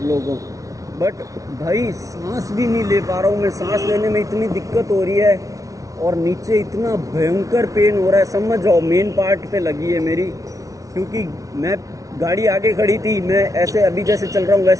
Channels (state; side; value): late; left; 0.17 ms